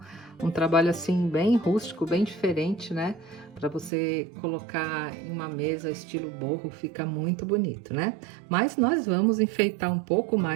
um trabalho assim bem rústico, bem diferente, né? Para você colocar em uma mesa estilo boho, fica muito bonito, né? Mas nós vamos enfeitar um pouco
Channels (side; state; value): left; drops out; at 3.9 s